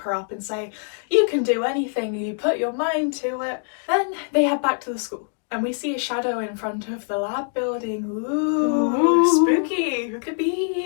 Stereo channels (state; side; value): silent; right; digital silence